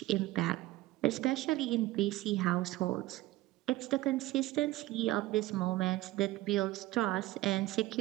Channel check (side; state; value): left; quieter; 17.1 dB